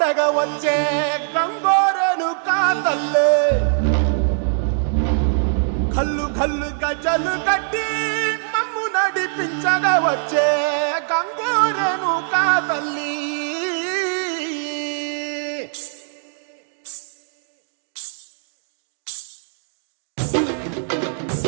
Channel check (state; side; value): silent; left; digital silence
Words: వచ్చే గంగోరెను కా తల్లి కల్లు కల్లు గజలు కట్టి మమ్ము నడిపించగా వచ్చే గంగోరెను కా తల్లి